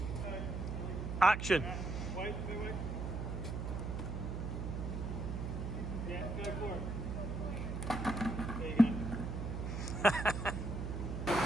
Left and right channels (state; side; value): noise; right; hum, 3 dB below the sound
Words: action. Wait. Yeah, go for it. There you go.